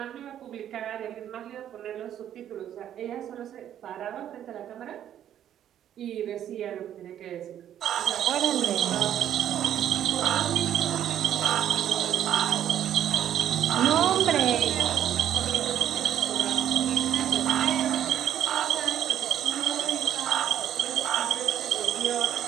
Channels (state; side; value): quieter; left; 10.6 dB